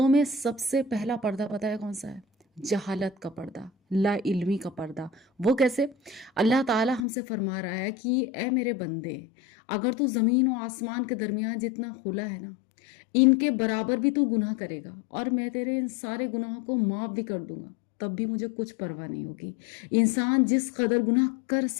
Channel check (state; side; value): drops out; right; at 7.0 s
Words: میں سب سے پہلا پردہ پتہ ہے کون سا ہے؟ جہالت کا پردہ، لا علمی کا پردہ۔ وہ کیسے؟ اللہ تعالی ہم سے فرما رہا ہے کہ اے میرے بندے، اگر تو زمین و آسمان کے درمیان جتنا خلا ہے نا، ان کے برابر بھی تو گناہ کرے گا اور میں تیرے ان سارے گناہوں کو معاف بھی کر دوں گا، تب بھی مجھے کچھ پرواہ نہیں ہوگی۔ انسان جس قدر گناہ کر